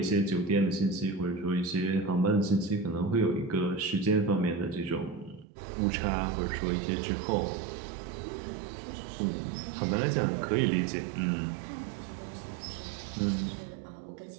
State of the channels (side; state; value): left; drops out; at 5.5 s